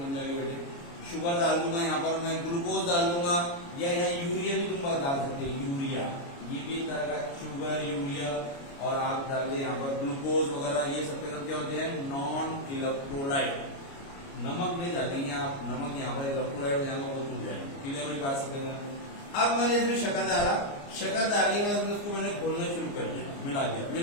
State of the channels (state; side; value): late; right; 29 ms